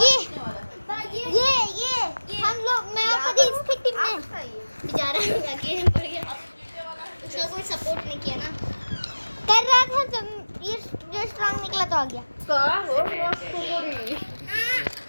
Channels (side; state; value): both; inverted; correlation -1.00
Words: ये हम लोग, मैं और कभी इसकी टीम में बेचारा आगे बढ़ गया, उसका कोई सपोर्ट नहीं किया ना, कर रहा था जब ये जो स्ट्रांग निकला तो आ गया। का हो